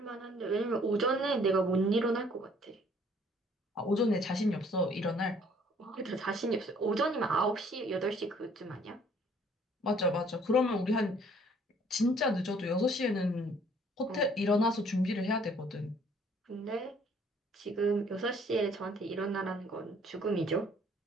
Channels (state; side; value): normal; both; correlation 0.59